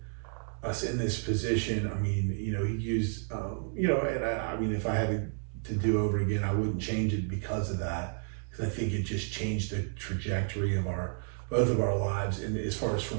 us in this position. I mean, he used and I mean, if I had to do over again, I wouldn't change it because of that, because I think it just changed the trajectory of both of our lives, and as far as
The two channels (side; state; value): left; silent; 57 dB below the other